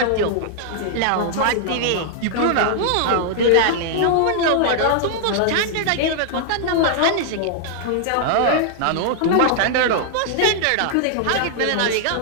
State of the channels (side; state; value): both; different; correlation -0.01